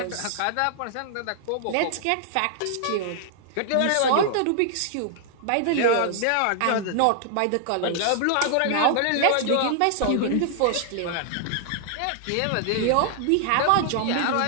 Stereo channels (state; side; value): different; both; correlation -0.01